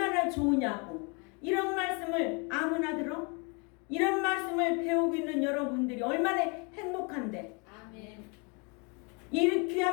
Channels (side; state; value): right; quieter; 33.1 dB